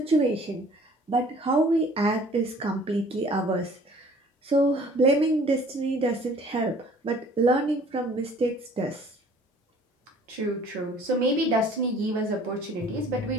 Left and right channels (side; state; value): both; normal; correlation 0.52